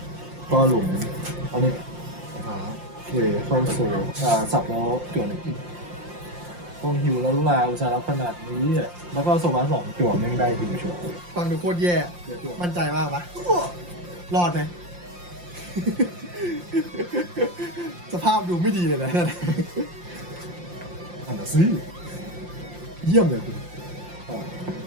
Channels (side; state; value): left; late; 5.7 ms